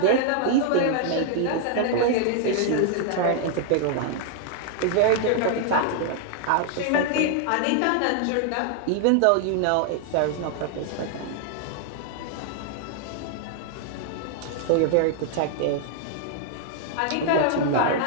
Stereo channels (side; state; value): both; different; correlation 0.00